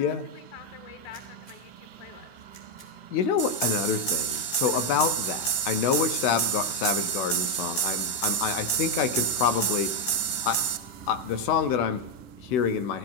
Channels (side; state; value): right; late; 15 ms